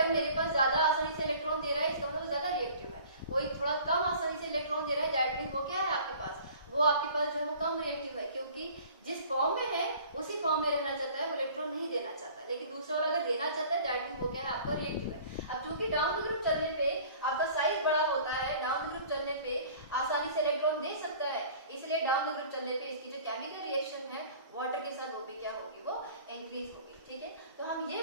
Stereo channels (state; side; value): inverted; both; correlation -0.48